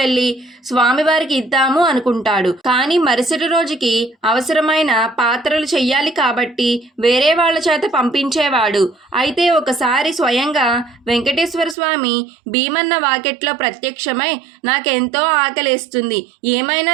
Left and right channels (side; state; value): left; drops out; at 11.8 s